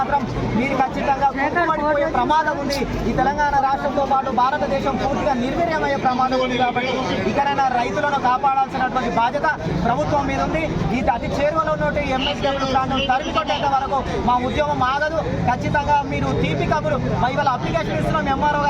మీరు ఖచ్చితంగా కుంటుపడిపోయే ప్రమాదం ఉంది. ఈ తెలంగాణ రాష్ట్రంతో పాటు భారతదేశం పూర్తిగా నిర్వీర్యమయ్యే ప్రమాదం ఉంది. కాబట్టి ఇకనైనా రైతులను కాపాడాల్సినటువంటి బాధ్యత ప్రభుత్వం మీద ఉంది. ఈ అతి చేరువలో ఉన్నటువంటి MSW ప్లాంట్ తరిమికొట్టేంత వరకు మా ఉద్యమం ఆగదు. ఖచ్చితంగా మీరు తీపి కబురు ఇవాళ అప్లికేషన్ ఇస్తున్నాం MRO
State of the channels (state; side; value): identical; both; correlation 1.00